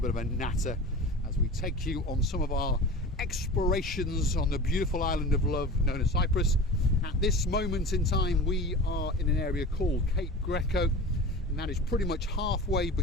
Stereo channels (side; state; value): both; normal; correlation 0.35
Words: of a natter as we take you on some of our explorations on the beautiful island of love known as Cyprus. At this moment in time, we are in an area called Cape Greco, and that is pretty much halfway